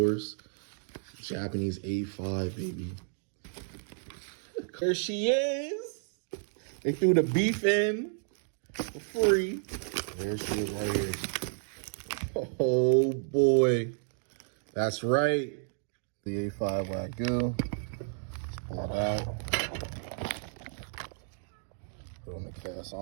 Japanese A5, baby. There she is. They threw the beef in for free. There she is right here. Oh boy. That's right. The A5 Wagyu. Let's pull it out. Put it on the cast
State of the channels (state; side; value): silent; left; digital silence